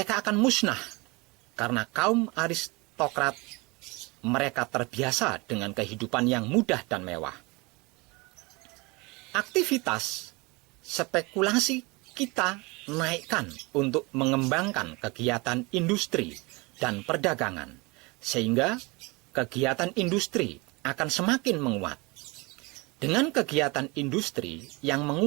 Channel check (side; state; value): left; quieter; 26.2 dB